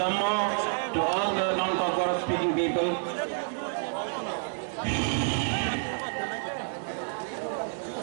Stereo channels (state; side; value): silent; left; digital silence